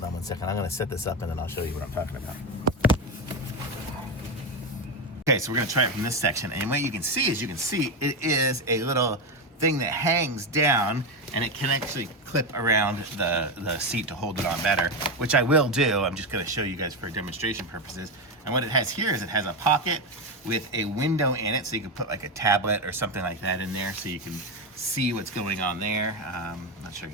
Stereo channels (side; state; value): both; normal; correlation 0.12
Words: on one second. I'm going to set this up and then I'll show you what I'm talking about. Okay, so we're going to try it from this section. And what you can see is, it is a little thing that hangs down, and it can actually clip around the seat to hold it on better, which I will do. I'm just going to show you guys for demonstration purposes. And what it has here is it has a pocket with a window in it, so you can put like a tablet or something like that in there, so you can see what's going on there. Not sure